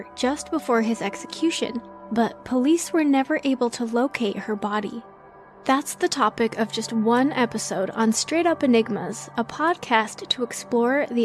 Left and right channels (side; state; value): both; identical; correlation 1.00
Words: just before his execution, but police were never able to locate her body. That's the topic of just one episode on Straight Up Enigmas, a podcast to explore